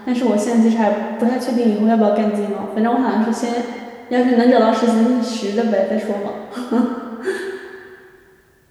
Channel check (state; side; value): identical; both; correlation 1.00